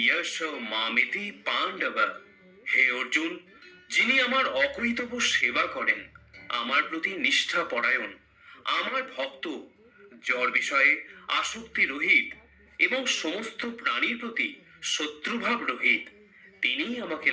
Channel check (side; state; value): both; identical; correlation 1.00